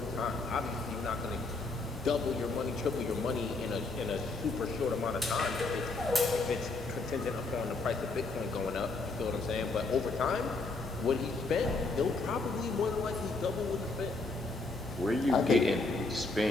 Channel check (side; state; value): right; quieter; 3.5 dB